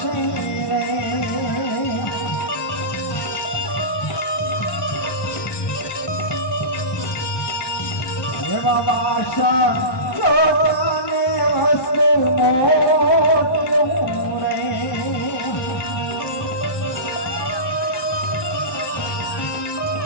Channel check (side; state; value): right; late; 1.2 ms